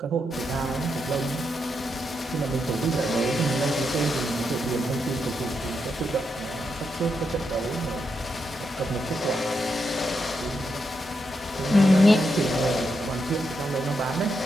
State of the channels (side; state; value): both; normal; correlation 0.83